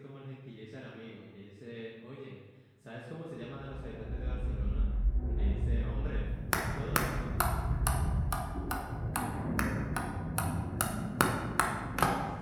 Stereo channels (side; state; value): both; identical; correlation 1.00